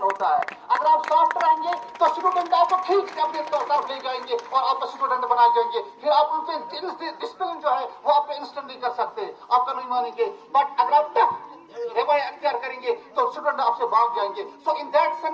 ہوتا ہے. اگر آپ سافٹ رہیں گے تو اسٹوڈنٹ آپ کو ٹھیک سے اپنے طرف لے جائیں گے اور آپ کا اسٹوڈنٹ بنائے جائیں گے، پھر آپ ان پہ ڈسپلن جو ہے وہ آپ پہ انسٹنٹ نہیں کر سکتے، آپ کا نہیں مانیں گے، بٹ اگر آپ ٹف رویہ اختیار کریں گے تو اسٹوڈنٹ آپ سے بھاگ جائیں گے. So in that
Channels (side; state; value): both; identical; correlation 1.00